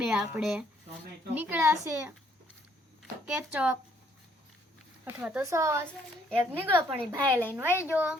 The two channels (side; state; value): both; normal; correlation 0.66